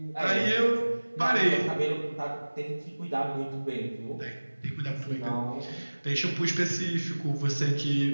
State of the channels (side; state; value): both; inverted; correlation -1.00